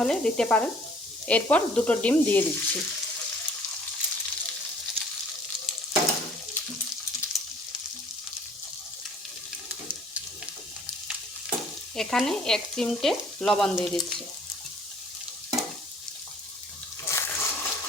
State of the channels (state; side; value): normal; both; correlation 0.55